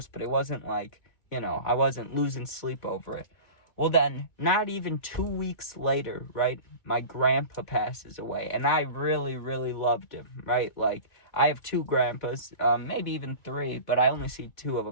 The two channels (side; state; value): right; late; 2.3 ms